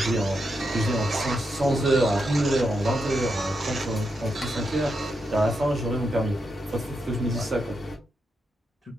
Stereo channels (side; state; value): both; normal; correlation 0.84